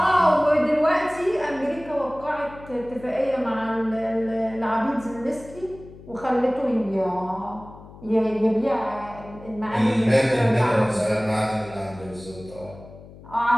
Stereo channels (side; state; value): left; noise; hum, 19 dB below the sound